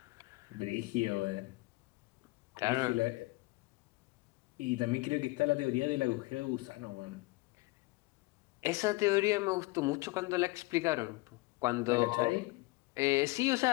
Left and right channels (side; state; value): right; quieter; 22.7 dB